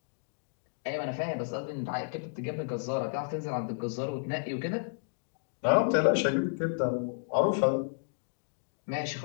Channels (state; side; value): silent; right; digital silence